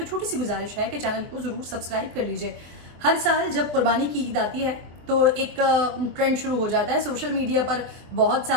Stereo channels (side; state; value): left; late; 24 ms